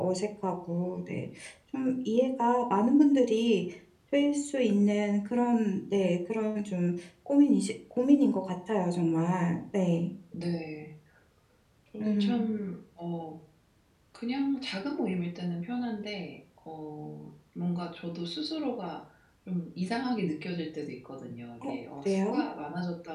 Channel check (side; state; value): both; identical; correlation 1.00